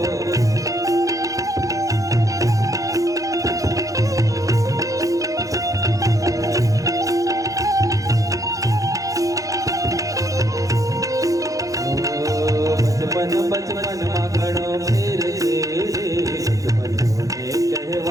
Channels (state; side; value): late; left; 0.16 ms